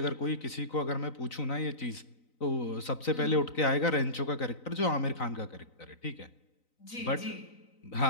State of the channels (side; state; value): right; late; 3.9 ms